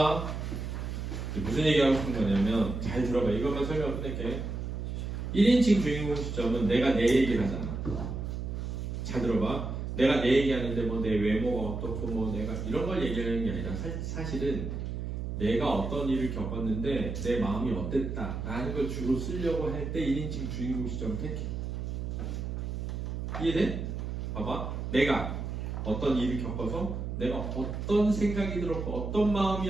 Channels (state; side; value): noise; right; hum, 4 dB below the sound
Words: 무슨 얘기하고 싶은 거냐면 잘 들어봐. 이것만 설명 끝낼게. 1인칭 주인공 시점은 내가 내 얘기를 하잖아. 잘 들어봐. 내가 내 얘기하는데 뭐 내 외모가 어떻고 뭐 내가 이런 걸 얘기하는 게 아니라 사실은 내가 어떤 일을 겪었는데 내 마음이 어땠다 라는 걸 주로 쓰려고 할 때 1인칭 주인공 시점을 택해. 이해돼? 봐봐. 내가 어떤 일을 겪어서 내가 어떤 생각이 들었고 어떤